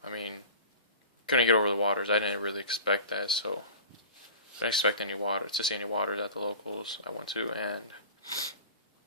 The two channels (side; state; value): both; inverted; correlation -0.37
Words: I mean, couldn't get over the Waters. I didn't really expect that, so I didn't expect to see any Waters at the locals I went to, and